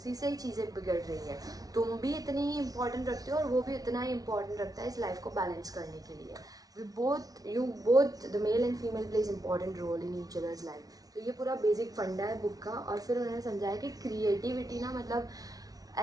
से ही चीज़ें बिगड़ रही है। तुम भी इतनी ही इंपॉर्टेंट रखते हो और वो भी इतना ही इंपॉर्टेंट रखता है इस लाइफ को बैलेंस करने के लिए। you both the male and female plays important role in each other's life। तो ये पूरा बेसिक फंडा है बुक का। और फिर उन्होंने समझाया कि क्रिएटिविटी ना मतलब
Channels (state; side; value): late; left; 0.18 ms